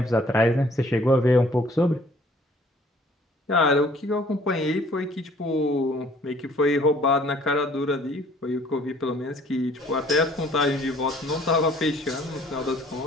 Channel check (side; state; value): both; normal; correlation 0.57